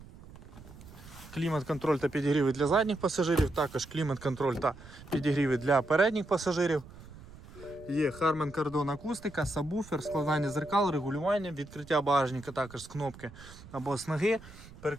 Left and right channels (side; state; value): right; noise; rumble, 19 dB below the sound